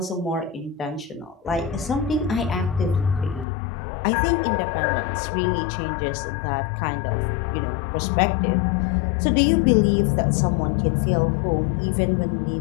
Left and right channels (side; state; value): right; drops out; at 3.5 s